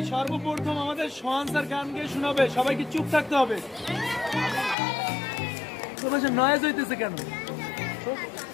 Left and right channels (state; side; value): drops out; right; at 4.8 s